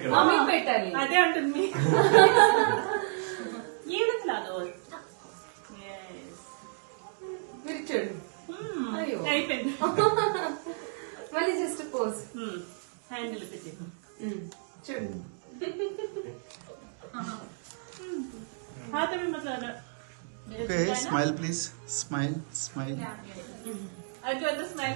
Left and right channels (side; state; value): left; silent; digital silence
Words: మమ్మీకి పెట్టాలి అదే అంటుంది ఏదో క్లాదో మీరు చూడండి అయిపోయింది మళ్ళీ జస్ట్ పోజ్ హ్యాండిల్ పెట్టి చూడండి हाँ तभी मतलब okay smile please smile smile अगर अंदर स्माइल